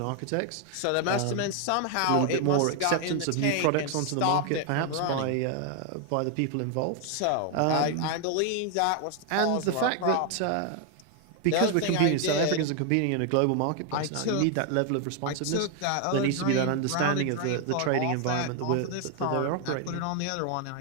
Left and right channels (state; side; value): different; both; correlation 0.00